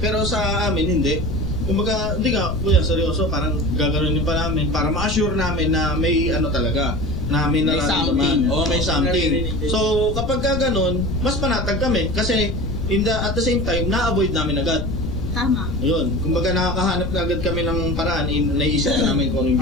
sa amin, hindi. Kumbaga, hindi ka, kuya, seryoso, parang gagawin pa namin para ma-assure namin na may ano talaga, na may nararamdaman. Oo, may something. So, kapag ganun, mas panatag kami. Kasi, at the same time, na-avoid namin agad. Tama. Yun. Kumbaga, nakakahanap na agad kami ng paraan, naisip na namin kung anong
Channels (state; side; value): noise; left; rumble, 4 dB below the sound